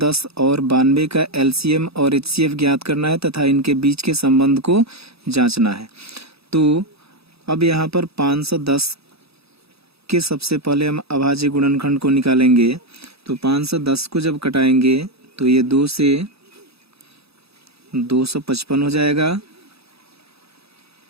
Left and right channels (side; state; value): left; late; 0.78 ms